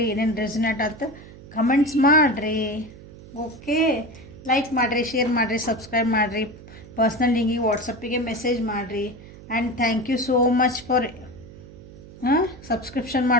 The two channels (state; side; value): noise; right; hum, 18 dB below the sound